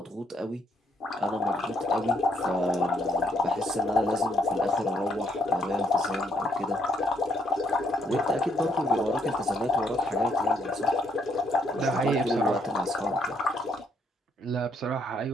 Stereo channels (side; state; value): both; normal; correlation 0.72